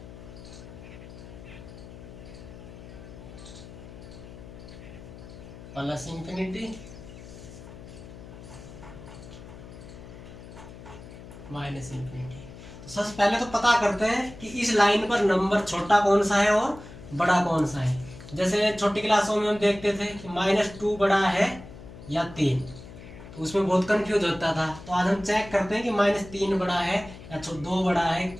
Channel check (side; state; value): left; noise; hum, 15 dB below the sound